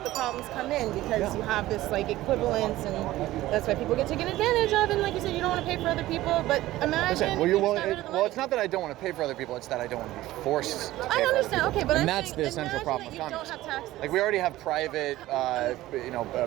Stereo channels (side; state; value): left; quieter; 16.2 dB